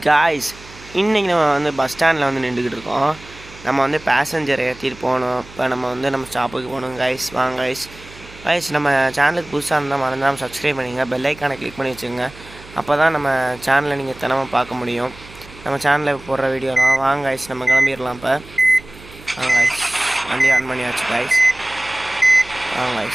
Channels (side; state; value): right; noise; hum, 20 dB below the sound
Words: guys, இன்றைக்கி நம்ம வந்து பஸ் ஸ்டாண்டில் வந்து நின்றுக்கிட்டு இருக்கோம். நம்ம வந்து பேசஞ்சரை ஏற்றிட்டு போகணும். இப்போ நம்ம ஸ்டாப்புக்கு போகணும் காய்ஸ். வாங்க காய்ஸ், நம்ம சேனலுக்கு புதுசாக இருந்தால் மறந்தாமல் சப்ஸ்கிரைப் பண்ணிங்க, பெல் ஐக்கானை கிளிக் பண்ணி வச்சுங்க. அப்போ தான் நம்ம சேனலை நீங்கள் தினமும் பார்க்க முடியும். நம்ம சேனலில் போடுற வீடியோலாம். வாங்க காய்ஸ், நம்ம கிளம்பிடலாம். இப்போ வாங்க காய்ஸ், வண்டி ஆன் பண்ணியாச்சு காய்ஸ். வாங்க